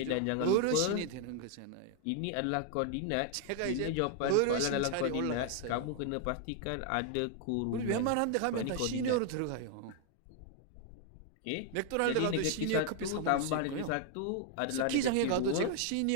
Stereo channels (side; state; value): both; different; correlation 0.00